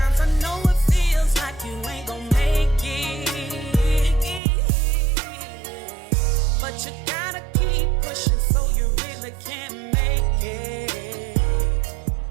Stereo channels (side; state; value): left; drops out; at 4.4 s